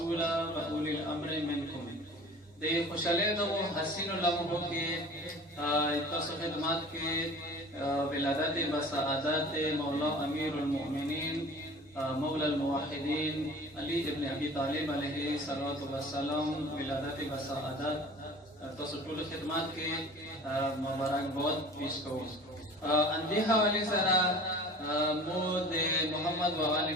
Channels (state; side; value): normal; both; correlation 0.43